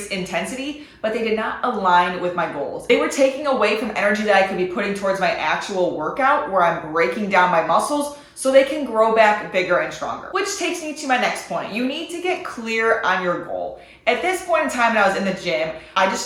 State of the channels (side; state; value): both; identical; correlation 1.00